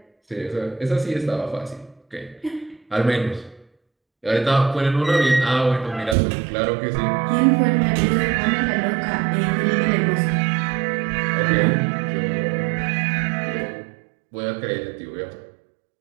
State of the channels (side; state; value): left; drops out; at 6.2 s